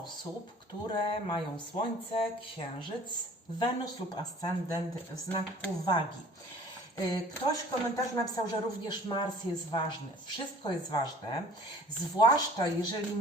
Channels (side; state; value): both; normal; correlation 0.49